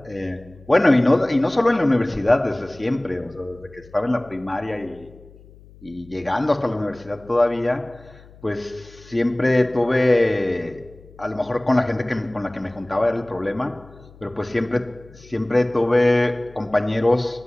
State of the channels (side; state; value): left; noise; hum, 23 dB below the sound